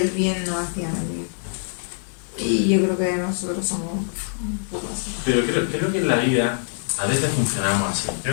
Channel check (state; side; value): silent; right; 63 dB below the other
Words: el bien, no hacían el bien. Y yo creo que nosotros somos un poco así. Pero creo que en la vida a veces funcionamos así.